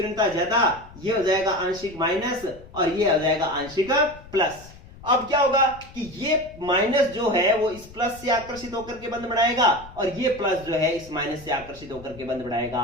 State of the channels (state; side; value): noise; left; rumble, 19 dB below the sound